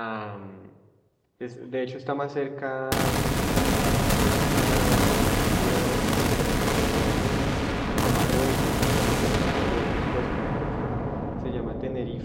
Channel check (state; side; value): identical; both; correlation 1.00